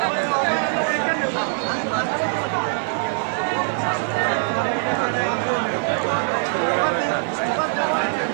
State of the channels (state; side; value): silent; left; 64 dB below the other